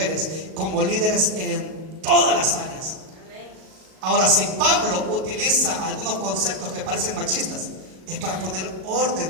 como líderes en todas las áreas. Ahora, si Pablo utiliza algunos conceptos que parecen machistas, es para poner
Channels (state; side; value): late; left; 38 ms